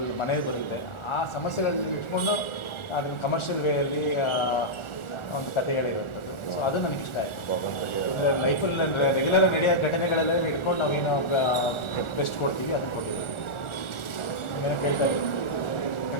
ಮನೆಗೆ ಬರುತ್ತೆ, ಆ ಸಮಸ್ಯೆಗಳನ್ನ ಇಟ್ಕೊಂಡು ಅದನ್ನು ಕಮರ್ಷಿಯಲ್ ವೇಯಲ್ಲಿ ಒಂದು ಕಥೆಗಳಿರುವಂಥದ್ದು. ಸೊ ಅದು ನನಗೆ ಇಷ್ಟ ಆಯಿತು. ಲೈಫಲ್ಲಿ ರೆಗ್ಯುಲರ್ ನಡೆಯೋ ಘಟನೆಗಳೆಲ್ಲ ಇಟ್ಕೊಂಡು ನಾವೇನು ಬೆಸ್ಟ್ ಕೊಡ್ತೀವಿ ಅದನ್ನು ಕೊಟ್ಟಿದ್ದೀವಿ. ಏನೋ ಕೇಳ್ತಾ ಇದ್ದೀವಿ,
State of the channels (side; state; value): right; late; 1.4 ms